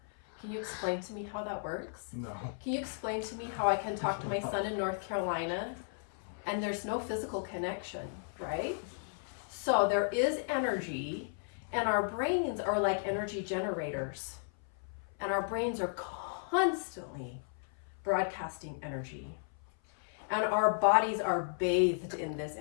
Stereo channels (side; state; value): right; silent; 55 dB below the other